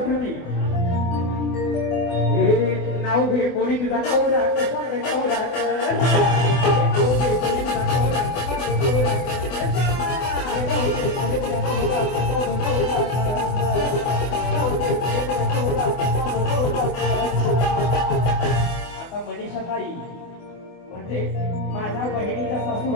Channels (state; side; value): late; right; 24 ms